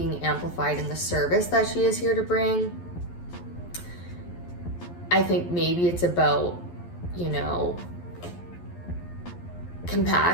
amplified in the service that she is here to bring. I think maybe it's about, you know,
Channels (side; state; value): right; late; 11 ms